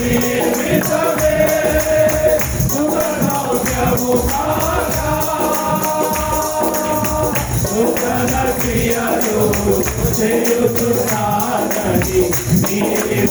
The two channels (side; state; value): both; identical; correlation 1.00